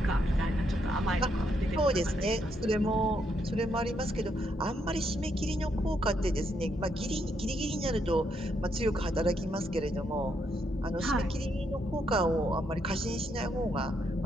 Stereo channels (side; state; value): both; normal; correlation 0.77